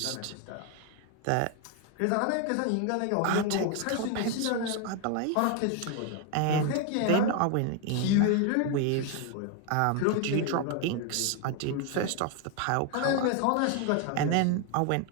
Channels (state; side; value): different; both; correlation 0.01